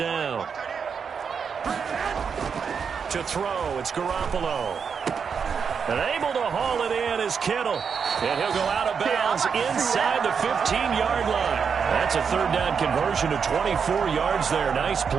To throw, it's Garoppolo. And able to haul it in is Kittle. And he'll go out of bounds inside the 15-yard line. That's a 3rd down conversion to 24 yards there. Nice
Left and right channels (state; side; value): quieter; left; 6.4 dB